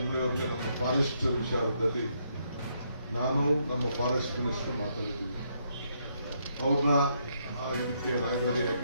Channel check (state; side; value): inverted; both; correlation -0.75